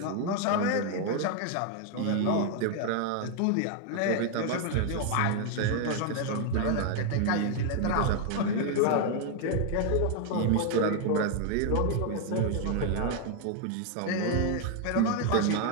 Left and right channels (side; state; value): both; different; correlation 0.00